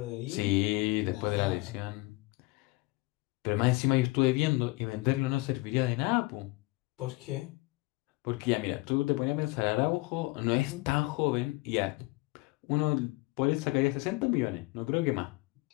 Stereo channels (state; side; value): quieter; right; 23.0 dB